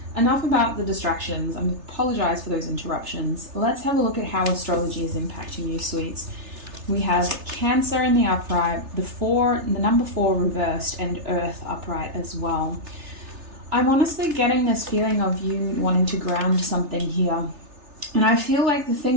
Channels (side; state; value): left; late; 3.3 ms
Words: enough about the distractions. I apologize for those interruptions. Let's have a look at how astrology is impacting you, sweets. We have Cancer in the upright, the number 4 reversed, and Earth upright as well. I'm honestly getting this feeling of you wanting to ground something here. And I feel like the